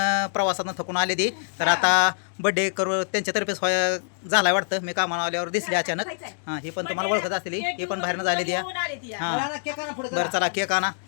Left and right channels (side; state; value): right; silent; digital silence